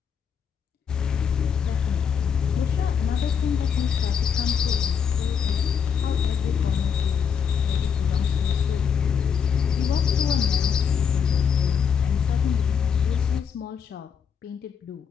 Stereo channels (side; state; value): right; quieter; 7.1 dB